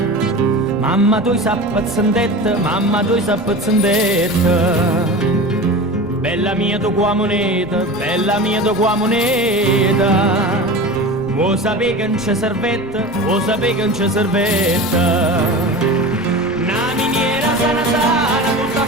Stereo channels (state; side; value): noise; left; rumble, 21 dB below the sound